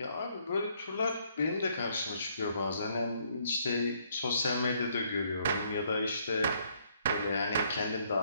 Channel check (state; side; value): inverted; both; correlation -0.68